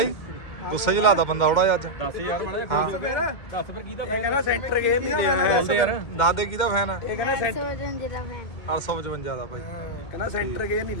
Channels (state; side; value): late; right; 2.1 ms